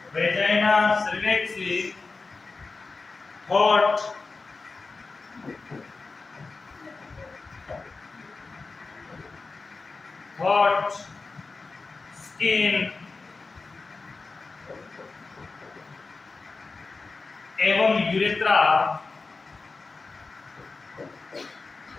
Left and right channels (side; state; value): right; quieter; 4.0 dB